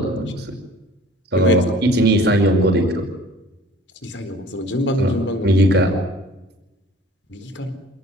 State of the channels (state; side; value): normal; both; correlation 0.49